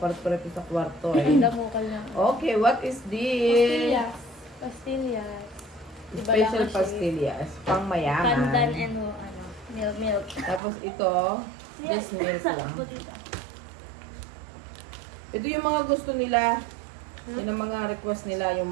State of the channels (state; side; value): drops out; left; at 10.6 s